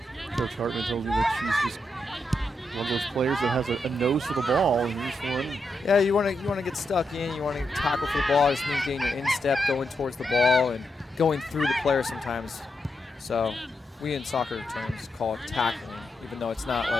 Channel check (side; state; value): both; normal; correlation 0.84